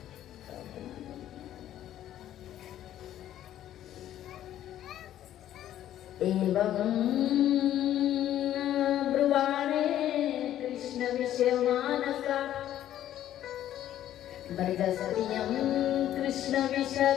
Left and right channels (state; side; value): quieter; right; 12.0 dB